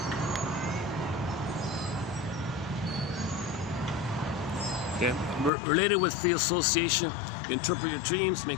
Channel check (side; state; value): right; drops out; at 5.5 s